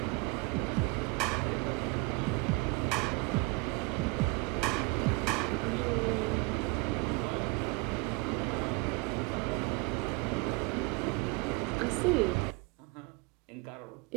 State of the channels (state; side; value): quieter; left; 25.4 dB